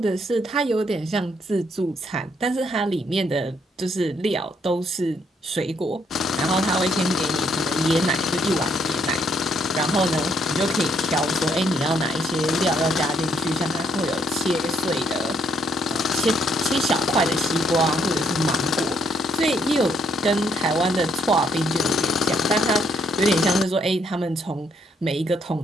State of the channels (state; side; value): normal; both; correlation 0.71